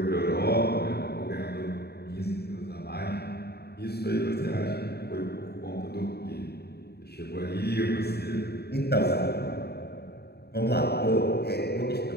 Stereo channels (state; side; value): late; right; 0.47 ms